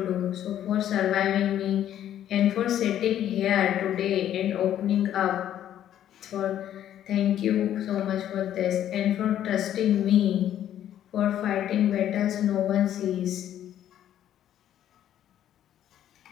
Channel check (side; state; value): right; quieter; 11.1 dB